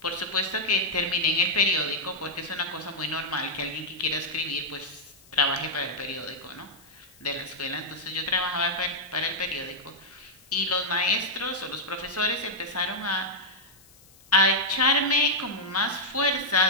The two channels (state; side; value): noise; left; hiss, 26 dB below the sound